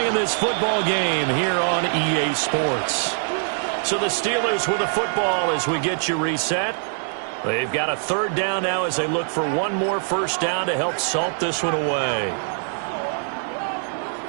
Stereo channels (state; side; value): silent; left; digital silence